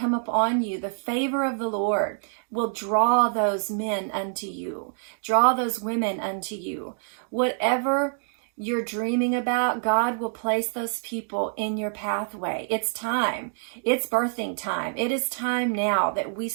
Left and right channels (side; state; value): left; silent; 61 dB below the other